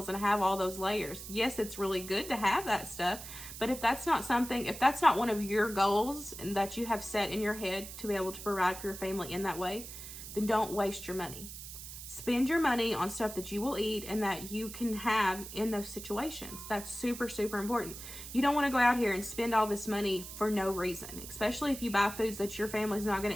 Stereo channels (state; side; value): noise; right; hiss, 11 dB below the sound